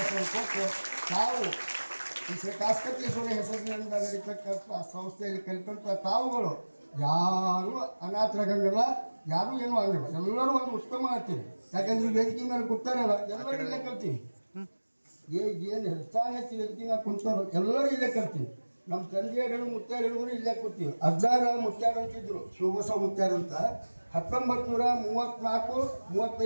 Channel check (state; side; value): inverted; both; correlation -1.00